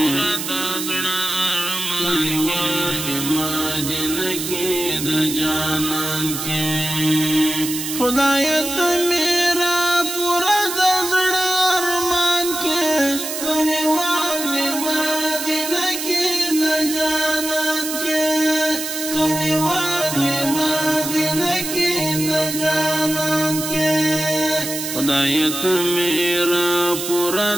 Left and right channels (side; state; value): right; noise; hiss, 5 dB below the sound